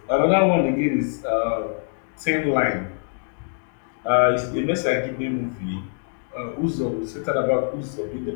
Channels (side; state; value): right; silent; digital silence